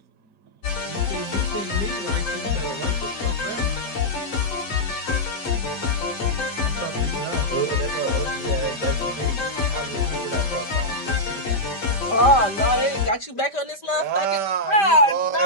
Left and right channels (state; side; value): late; right; 5.1 ms